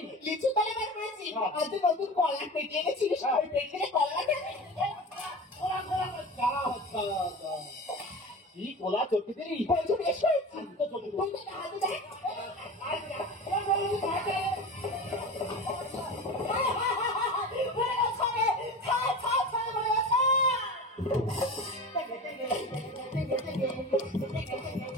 লিচু তলে বার করেছি, আর তুই নতুন কলা পেটে এনেছিলিস, ওই পেটে কলা দেবে। কি কোলা চটকে দিলি? বলছো বেশ করেছি, তো চটকে দিলি। তুমি তো হাতে দেখ। বলে গেছে, ছা, ছা, ছা, বলে গেছে।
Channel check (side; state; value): both; normal; correlation 0.31